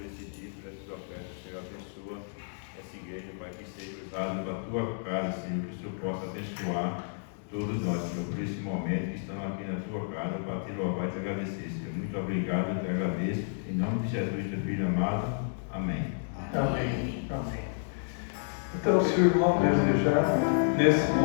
esse dia, por essa tua oferta, Senhor, abençoa essa igreja, Pai, que seja usada para a tua casa, Senhor, que o Senhor possa abençoar todos nós, Senhor, por esse momento que estamos aqui na tua casa para te louvar e te agradecer, Senhor. Muito obrigado, eu te agradeço, em nome de Jesus, teu filho amado, amém. Amém. Amém. Então, se o irmão desejar, nesse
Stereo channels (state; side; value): silent; right; digital silence